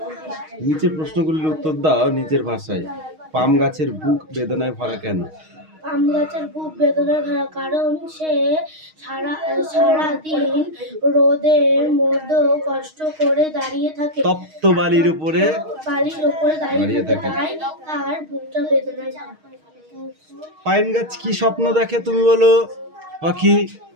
নিচের প্রশ্নগুলির উত্তর দাও নিজের ভাষায়। পাম গাছের বুক বেদনায় ভরা কেন? পাম গাছের বুক বেদনায় ভরা কারণ সে সারাদিন রোদের মধ্যে কষ্ট করে দাঁড়িয়ে থাকে। তপ্ত বালির উপরে দাঁড়িয়ে থাকে, তাই তার বুকটা বেদনায় ভরা। পাইন গাছ কি স্বপ্ন দেখে? তুমি বলো পাখি।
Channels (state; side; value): late; left; 6.4 ms